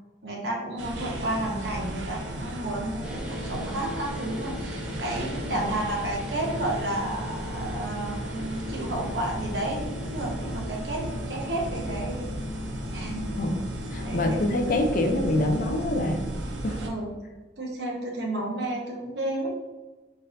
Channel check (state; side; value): normal; both; correlation 0.43